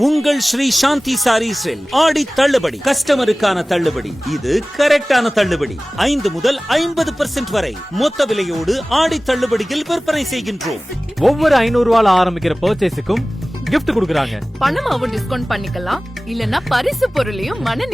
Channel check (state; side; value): normal; both; correlation 0.98